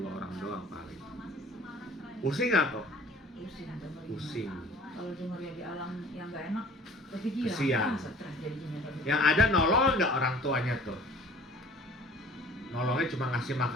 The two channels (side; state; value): both; normal; correlation 0.48